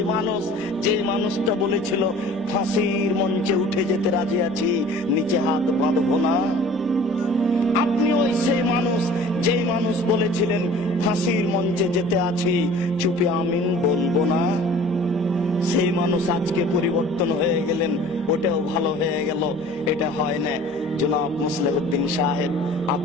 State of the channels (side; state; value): both; normal; correlation 0.47